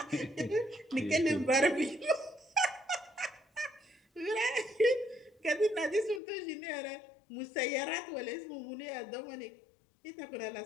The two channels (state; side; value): drops out; right; at 6.2 s